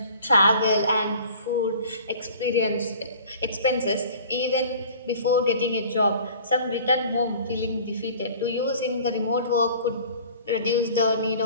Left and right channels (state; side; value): inverted; both; correlation -0.47